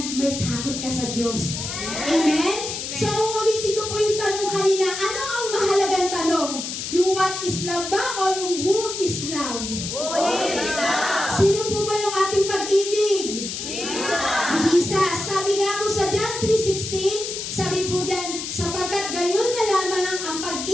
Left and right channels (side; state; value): left; noise; hiss, 5 dB below the sound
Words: may takot ka sa Diyos. Amen? So uulitin ko po yung tanong kanina, ano ang mahalagang tanong? Yung what is love ba o yung who is love? Who is love? Sino po ba yung ating pag-ibig? Jesus. Si Jesus. Sabi nga po sa John 3:16, sabi po dyan, sapagkat gayon na lamang ang